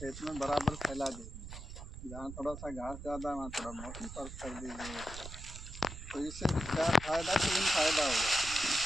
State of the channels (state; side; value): noise; right; rumble, 11 dB below the sound